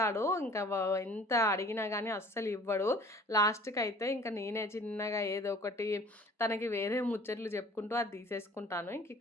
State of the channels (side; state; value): both; normal; correlation 0.50